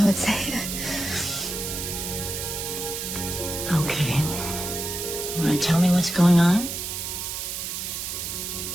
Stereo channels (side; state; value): right; noise; hiss, 4 dB below the sound